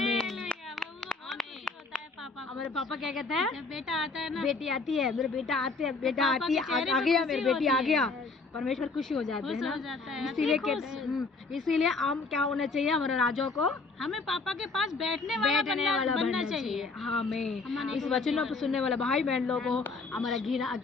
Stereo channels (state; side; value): quieter; right; 3.9 dB